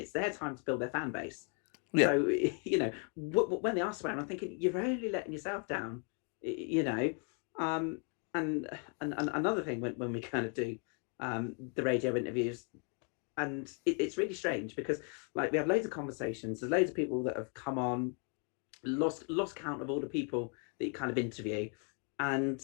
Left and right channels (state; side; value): quieter; right; 39.9 dB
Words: their time to build their fan base. Yeah. So when they are swearing, I'm thinking you're only letting yourself down. And another thing when we kind of do the radio interviews, and it's really strange because like we have loads of conversations. There's loads of people that have come on, lost count of all the people that you kind of interview, and